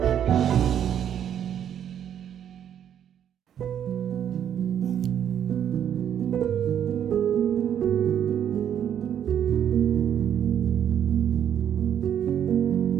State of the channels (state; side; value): quieter; left; 9.4 dB